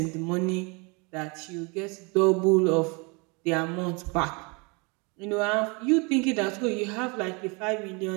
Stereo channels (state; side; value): quieter; left; 30.4 dB